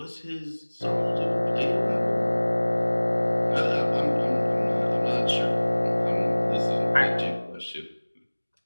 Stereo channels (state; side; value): inverted; both; correlation -1.00